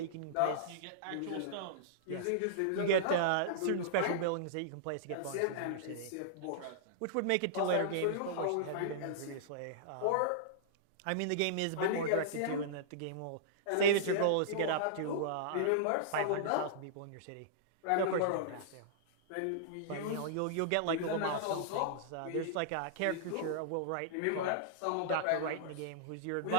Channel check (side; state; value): both; different; correlation -0.02